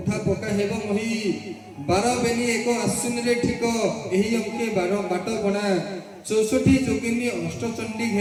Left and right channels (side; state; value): both; identical; correlation 1.00